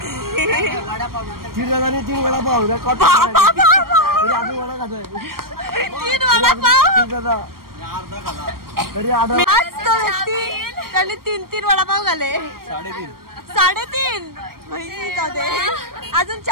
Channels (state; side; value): late; left; 0.93 ms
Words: 3 जणांनी 3 वडापाव रेकॉर्ड. अजून वडा खातोय 3 वडापाव तरी अर्धा. त्याने 3 वडापाव घाले. 3.5 अजून